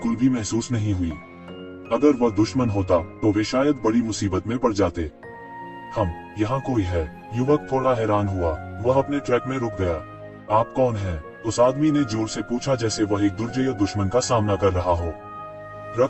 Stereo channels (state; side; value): identical; both; correlation 1.00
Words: भी महसूस नहीं हुई। अगर वह दुश्मन होता तो वे शायद बड़ी मुसीबत में पड़ जाते। हम यहाँ कोई है? युवक थोड़ा हैरान हुआ। वह अपने ट्रैक में रुक गया। आप कौन हैं? उस आदमी ने जोर से पूछा, जैसे वह एक दुर्जय दुश्मन का सामना कर रहा हो।